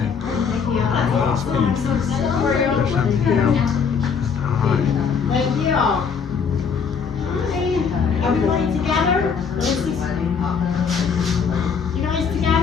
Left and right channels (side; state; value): right; quieter; 6.2 dB